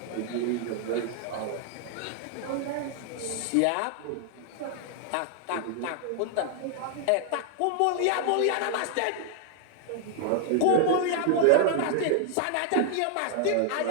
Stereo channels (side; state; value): both; different; correlation 0.00